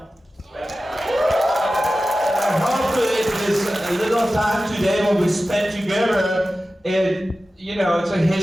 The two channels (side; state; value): both; normal; correlation 0.95